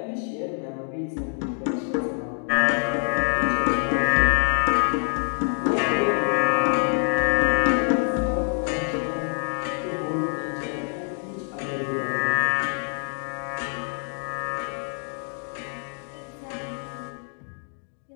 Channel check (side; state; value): right; silent; 61 dB below the other